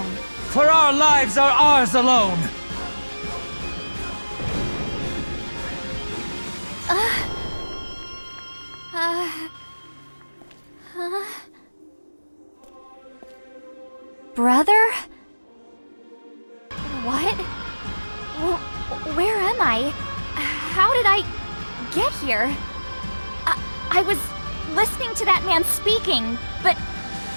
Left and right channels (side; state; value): both; inverted; correlation -1.00